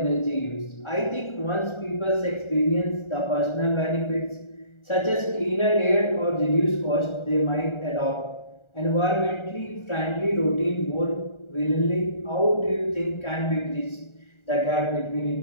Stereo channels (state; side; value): late; right; 1.4 ms